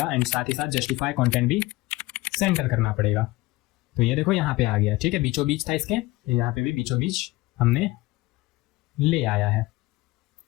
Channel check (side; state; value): right; quieter; 19.8 dB